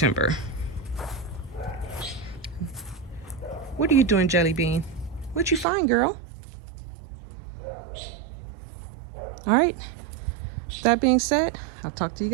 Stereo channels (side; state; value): left; drops out; at 5.7 s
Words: What are you doing, Jelly Bean? What'd you find, girl? All right, that being said, I'll talk to you